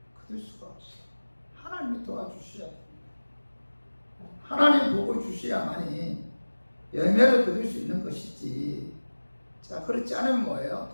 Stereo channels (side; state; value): both; inverted; correlation -1.00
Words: 거둘 수가 없어요. 하나님이 도와주셔야 됩니다. 하나님 복을 주셔야만이 열매를 거둘 수 있는 것이지. 자, 그렇지 않으면 뭐예요?